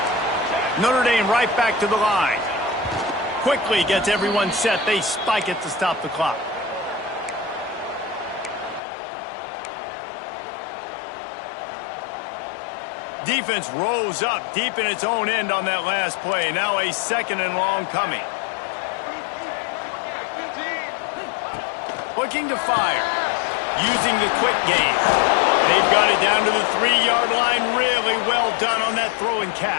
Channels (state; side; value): drops out; right; at 8.8 s